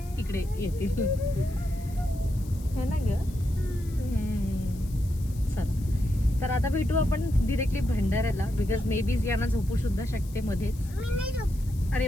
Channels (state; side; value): noise; left; hiss, 22 dB below the sound